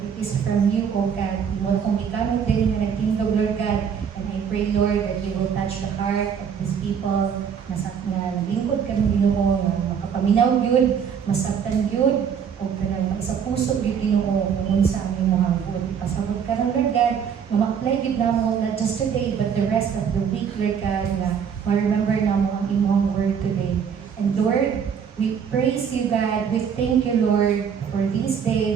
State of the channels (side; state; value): left; quieter; 7.4 dB